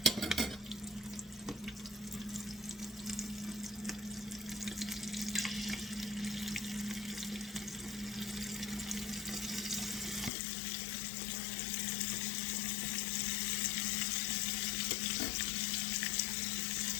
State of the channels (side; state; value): right; drops out; at 10.3 s